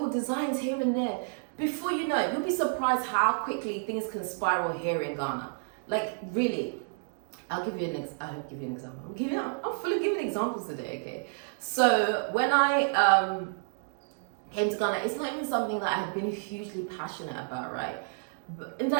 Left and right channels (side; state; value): left; silent; digital silence